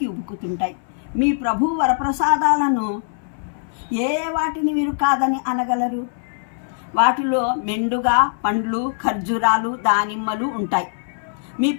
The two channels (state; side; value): silent; right; 65 dB below the other